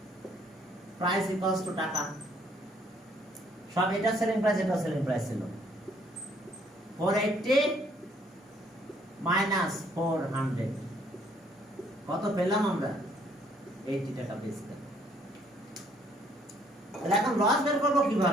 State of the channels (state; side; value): normal; both; correlation 0.65